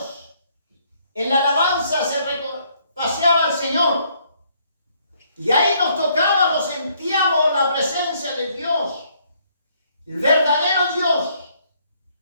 En la alabanza se paseaba el Señor. Y ahí nos tocaba, lo sentíamos, la presencia de Dios, el verdadero Dios.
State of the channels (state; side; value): inverted; both; correlation -0.67